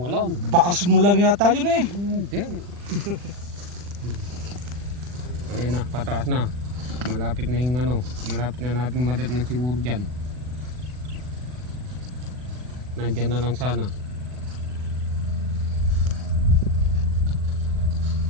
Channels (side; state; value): left; late; 40 ms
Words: Bakas mo lang yata yun eh. Hindi. Ayun na, pataas na. Malapit na yung ano, malapit na natin madat ng siguro dyan. Nandyan na lang sana.